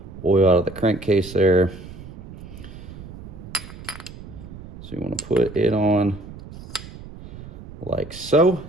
oil out of the crankcase there. So you wanna put it on like so.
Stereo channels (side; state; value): right; noise; rumble, 14 dB below the sound